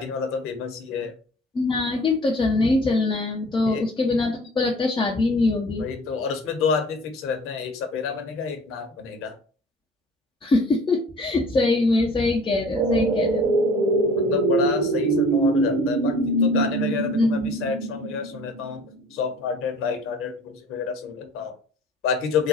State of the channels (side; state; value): both; normal; correlation 0.47